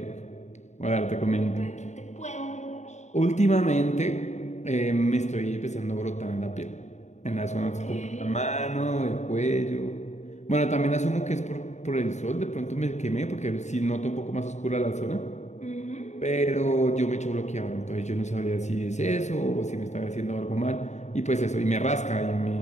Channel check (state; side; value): late; right; 0.34 ms